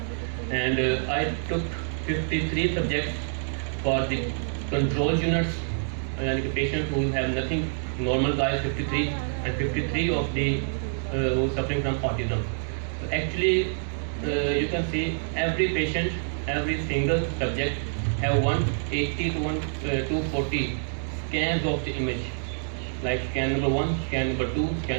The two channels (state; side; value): silent; left; digital silence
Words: And I took 53 subjects for the control units, and the patients who have nothing, normal guys 53, and 53 of the who suffering from autism. So actually, you can see every patient, every single subject have 180 to 240 scans of the image, like scan number 1, scan number 2,